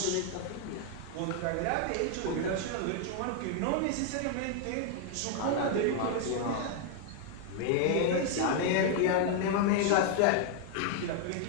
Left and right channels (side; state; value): both; different; correlation 0.00